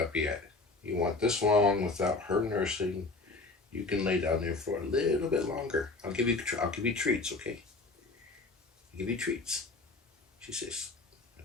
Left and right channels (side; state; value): right; quieter; 3.6 dB